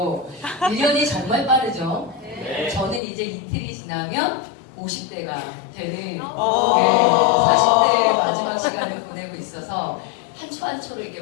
1년이 정말 빠르죠. 네. 저는 이제 이틀이 지나면 50대가 되는 40대의 마지막 시간을 보내고 있어서 한 초 한 초를 이렇게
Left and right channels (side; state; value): right; drops out; at 3.0 s